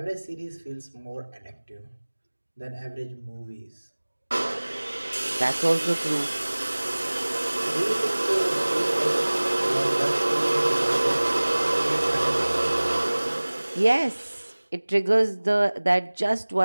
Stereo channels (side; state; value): both; inverted; correlation -1.00